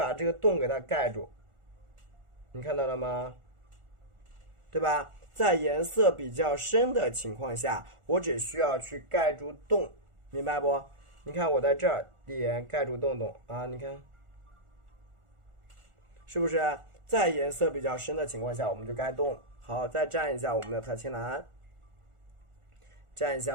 这个洞给它盖住，你看到了吗？对吧？在颜色比较深的情况下，我只需要去盖住洞，明白不？你看我在这儿点盖住洞洞啊，你看，是不是？在颜色比较深的情况下，我们就盖洞。好，再蘸一下我们的太青蓝，蘸一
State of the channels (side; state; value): left; late; 1.4 ms